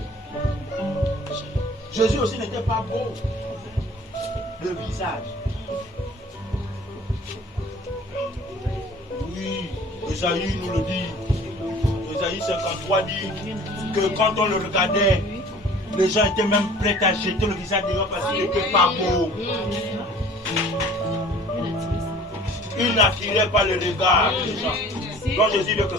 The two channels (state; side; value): normal; both; correlation 0.48